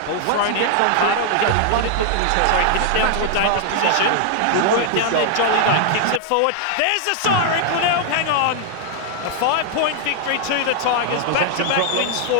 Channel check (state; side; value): different; both; correlation 0.00